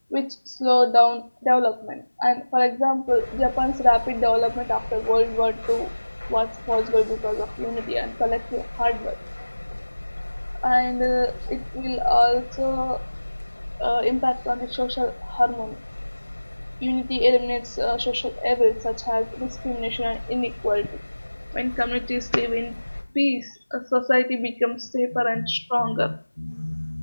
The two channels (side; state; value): both; inverted; correlation -1.00